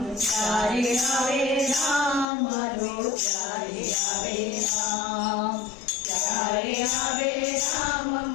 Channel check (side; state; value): right; drops out; at 2.2 s